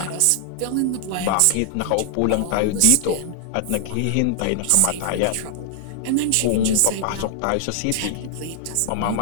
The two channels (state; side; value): different; both; correlation -0.01